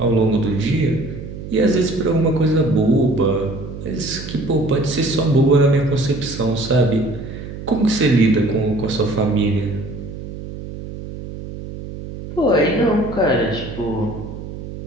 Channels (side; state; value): right; noise; hum, 10 dB below the sound